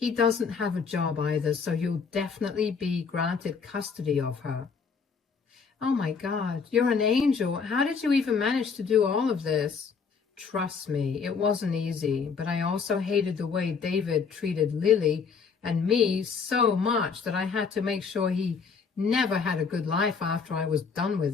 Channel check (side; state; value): right; quieter; 5.6 dB